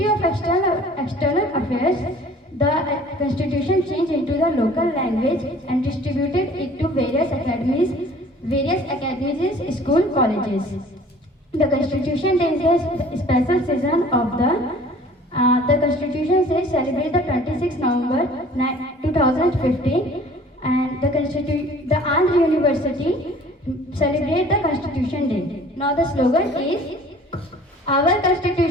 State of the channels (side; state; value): both; normal; correlation 0.50